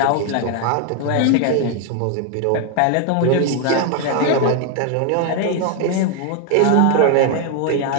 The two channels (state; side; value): different; both; correlation 0.01